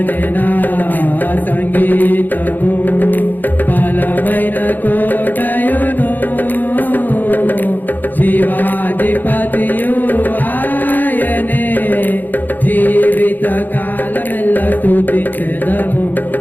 నా సంగీతము బలమైన కోటయును జీవాధిపతియు ఆయనే జీవిత కాలమెల్ల స్తుతించెదము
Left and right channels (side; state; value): right; late; 0.087 ms